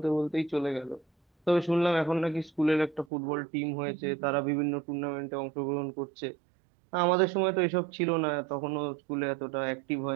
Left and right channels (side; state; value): left; drops out; at 3.1 s